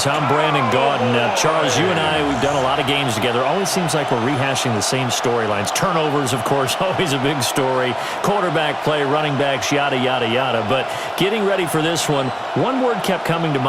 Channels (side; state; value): both; identical; correlation 1.00